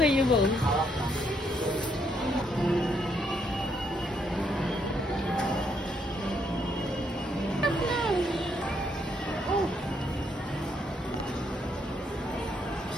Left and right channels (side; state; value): both; normal; correlation 0.74